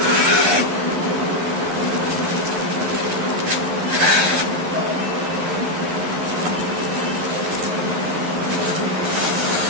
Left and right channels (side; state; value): left; late; 11 ms